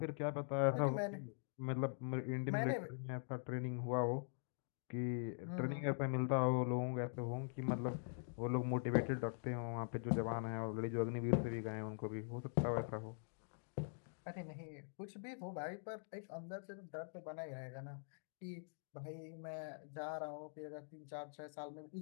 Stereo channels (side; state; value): right; silent; digital silence